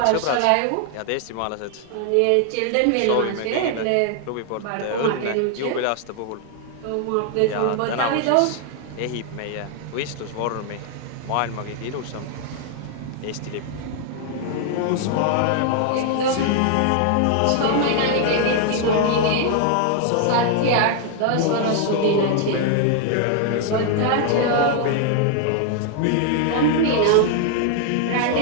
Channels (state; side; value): different; both; correlation 0.00